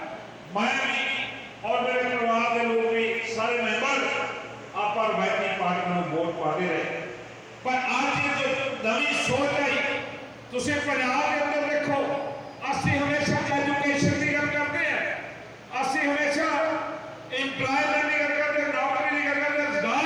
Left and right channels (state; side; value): identical; both; correlation 1.00